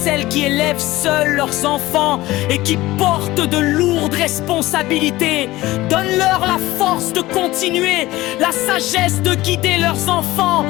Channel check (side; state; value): right; quieter; 18.0 dB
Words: qui élèvent seules leurs enfants et qui portent de lourdes responsabilités. Donne-leur la force de continuer, la sagesse de guider leurs enfants